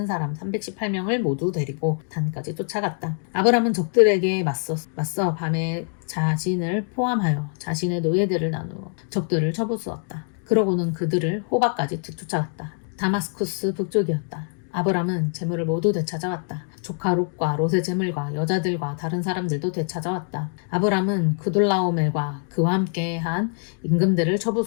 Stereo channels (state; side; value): silent; right; 55 dB below the other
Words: 사람 318명을 모두 데리고 단까지 쫓아갔다. 아브람은 적들에게 맞서 밤에 자신을 포함하여 자신의 노예들을 나누어 적들을 쳐부수었다. 그러고는 그들을 호바까지 뒤쫓아갔다. 다마스쿠스 북쪽이었다. 아브람은 재물을 모두 되찾아왔다. 조카 롯과 롯의 재물과 여자들과 다른 사람들도 되찾아왔다. 아브람은 그돌라오멜과 그와 함께한 임금들을